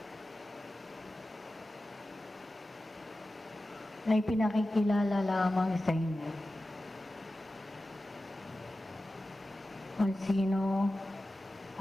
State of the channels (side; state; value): both; normal; correlation 0.94